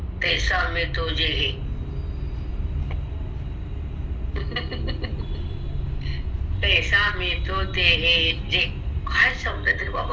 तैसा मी तो जे हे. तैसा मी तो ते हे जे. काय शब्द तरी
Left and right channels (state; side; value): identical; both; correlation 1.00